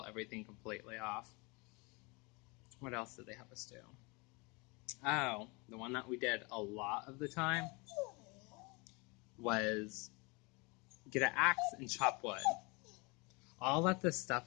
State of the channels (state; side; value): quieter; right; 28.5 dB